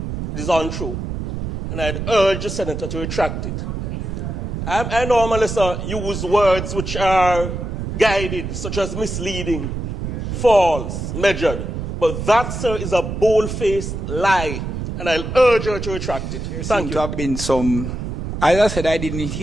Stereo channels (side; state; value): right; noise; rumble, 5 dB below the sound